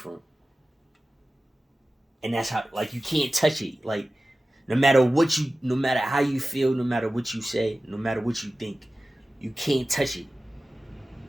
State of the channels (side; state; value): both; normal; correlation 0.95